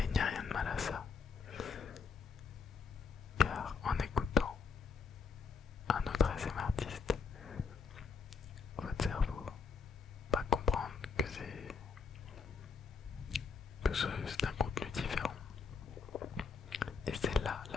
il n'y a rien de mal à ça. Car en écoutant un autre ASMR artiste, votre cerveau va comprendre que c'est un contenu différent. Et c'est là,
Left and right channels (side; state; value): right; quieter; 5.1 dB